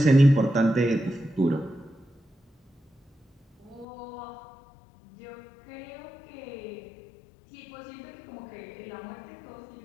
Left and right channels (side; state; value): right; drops out; at 3.9 s